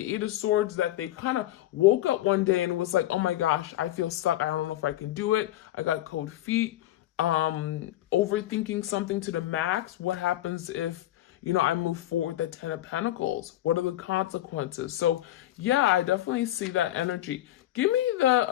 Eight of Swords, that they kind of woke up one day and was like, oh my gosh, I feel stuck. I don't know if I can do it. I got cold feet. Overthinking something to the max. What happens if, you know, I move forward the Ten of Pentacles? What are the consequences? So yeah, I definitely see that energy. Give me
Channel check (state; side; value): quieter; right; 14.1 dB